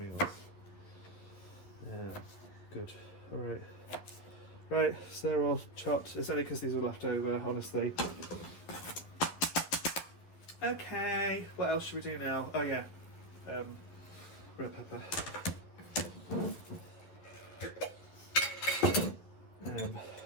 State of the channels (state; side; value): late; right; 12 ms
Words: Yeah, good. All right. Right, so they're all chopped. It's only because these are left over, honestly. Okay, what else should we do now? Oh yeah, red pepper.